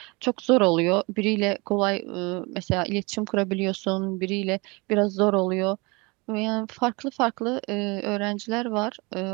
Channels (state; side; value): quieter; left; 27.1 dB